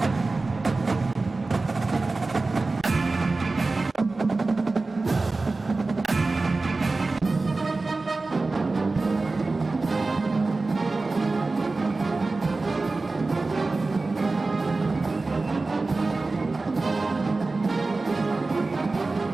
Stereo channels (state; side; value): quieter; left; 3.5 dB